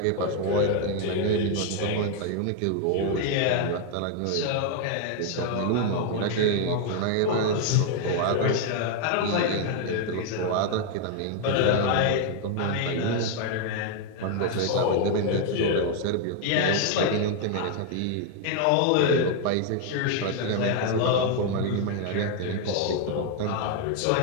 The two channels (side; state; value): both; different; correlation 0.00